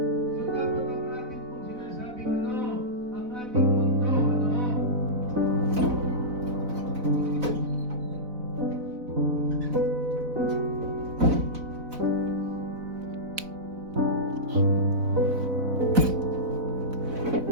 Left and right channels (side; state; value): left; late; 4.0 ms